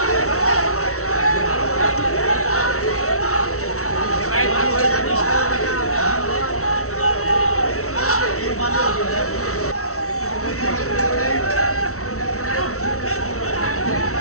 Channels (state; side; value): late; right; 0.64 ms